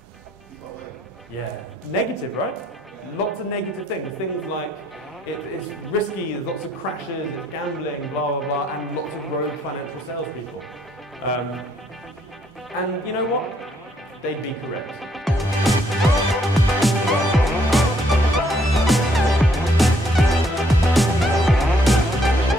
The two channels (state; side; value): normal; both; correlation 0.68